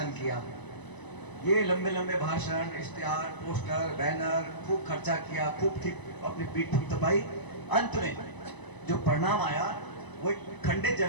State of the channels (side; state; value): right; late; 1.0 ms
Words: किया, ये लंबे लंबे भाषण, इश्तिहार, पोस्टर, बैनर, खूब खर्चा किया, खूब अपनी पीठ थपथपाई। अंत में जो परिणाम आया वो एक खंडित